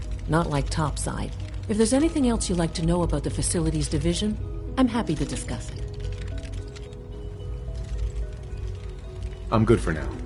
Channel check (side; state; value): both; identical; correlation 1.00